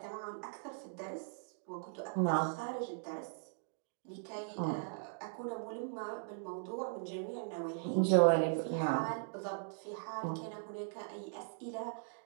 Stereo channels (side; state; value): left; silent; digital silence